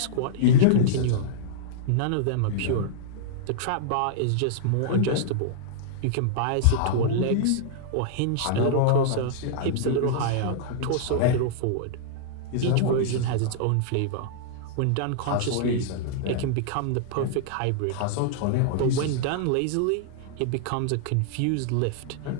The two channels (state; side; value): different; both; correlation -0.02